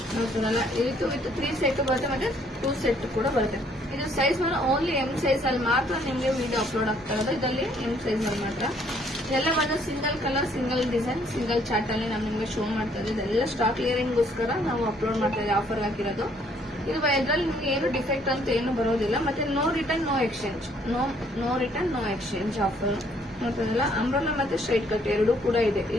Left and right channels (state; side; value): normal; both; correlation 0.64